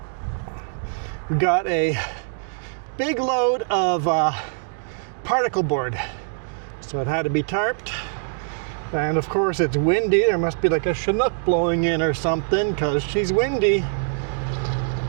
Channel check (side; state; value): left; silent; digital silence